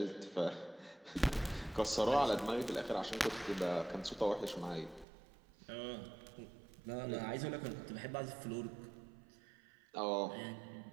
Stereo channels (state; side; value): drops out; left; at 5.1 s